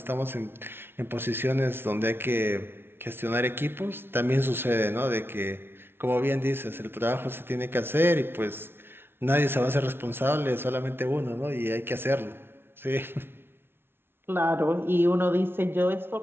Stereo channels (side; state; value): left; late; 0.11 ms